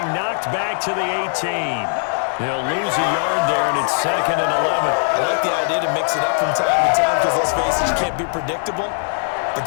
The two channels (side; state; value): right; silent; digital silence